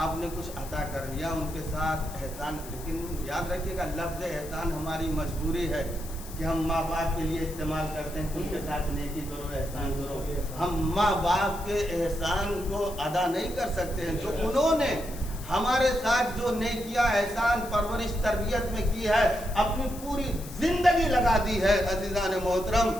آپ نے کچھ عطا کر لیا، ان کے ساتھ احسان، لیکن یاد رکھیے گا لفظ احسان ہماری مجبوری ہے کہ ہم ماں باپ کے لیے استعمال کرتے ہیں، ان کے ساتھ نیکی کرو، احسان کرو۔ ہم ماں باپ کے احسان کو ادا نہیں کر سکتے ہیں، جو انہوں نے ہمارے ساتھ جو نیکیاں، احسان، پرورش، تربیت میں کی ہے، اپنی پوری زندگی لگا دی ہے عزیزان محترم،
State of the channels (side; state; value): left; noise; hiss, 15 dB below the sound